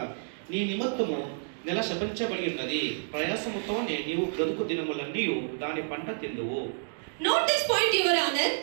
నీ నిమిత్తము నెల శపించబడి ఉన్నది. ప్రయాసముతోనే నీవు బ్రతుకు దినములన్నీ దాని పంట తిందువు. Note this point your honour.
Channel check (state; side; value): silent; left; digital silence